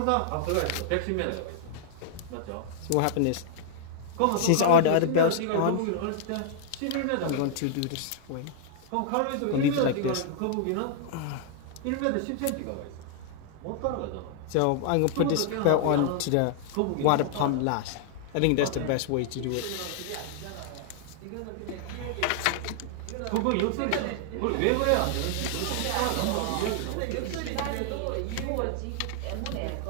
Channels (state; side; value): different; both; correlation -0.01